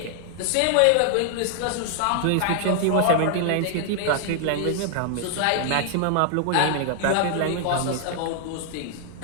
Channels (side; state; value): both; different; correlation 0.00